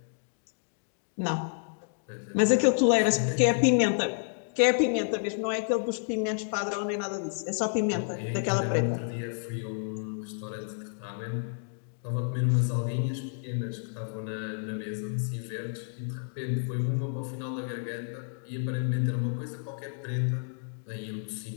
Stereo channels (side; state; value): right; silent; digital silence